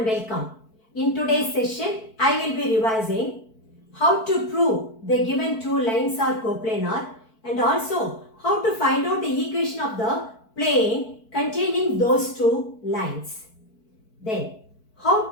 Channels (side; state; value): right; late; 4.5 ms